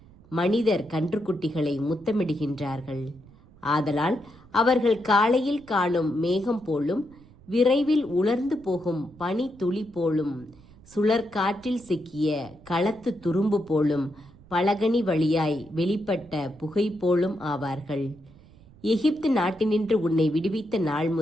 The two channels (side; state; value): right; noise; rumble, 24 dB below the sound